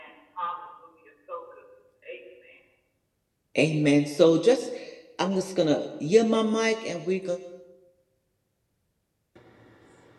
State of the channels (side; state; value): both; identical; correlation 1.00